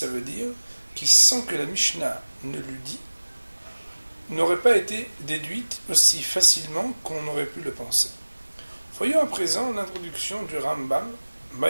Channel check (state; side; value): inverted; both; correlation -1.00